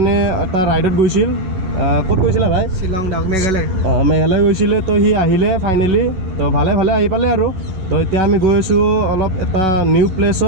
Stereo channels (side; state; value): left; late; 11 ms